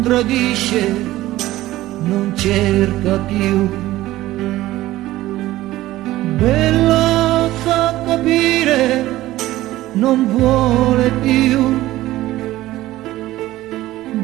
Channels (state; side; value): quieter; left; 16.1 dB